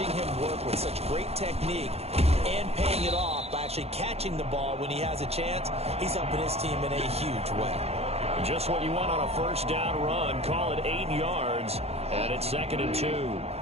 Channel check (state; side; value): late; left; 0.30 ms